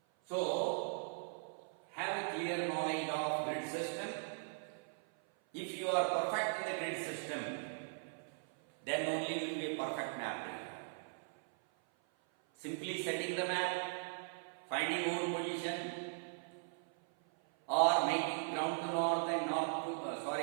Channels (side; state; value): left; silent; 52 dB below the other